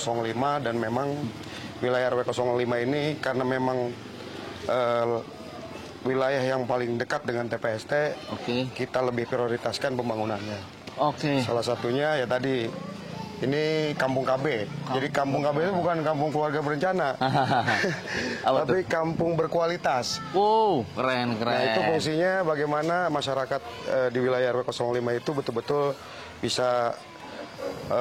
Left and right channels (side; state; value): both; identical; correlation 1.00